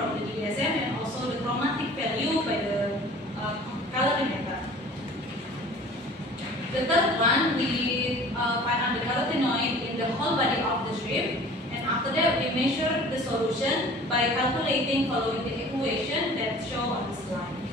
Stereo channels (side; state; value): both; normal; correlation 0.46